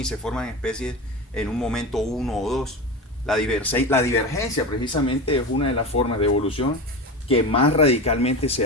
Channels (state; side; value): normal; both; correlation 0.25